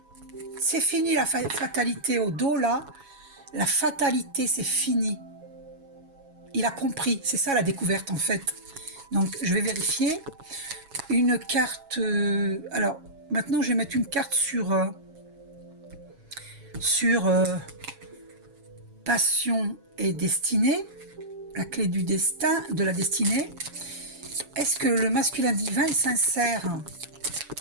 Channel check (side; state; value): left; late; 7.2 ms